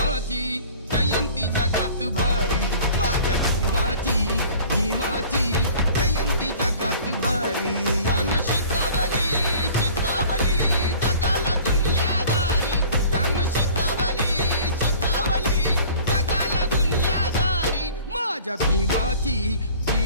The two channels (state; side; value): inverted; both; correlation -0.47